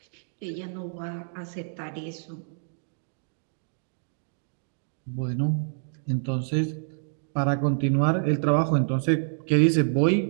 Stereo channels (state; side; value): silent; left; digital silence